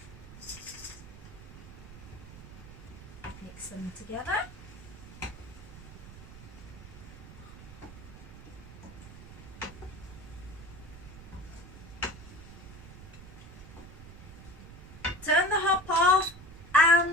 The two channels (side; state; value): right; noise; rumble, 15 dB below the sound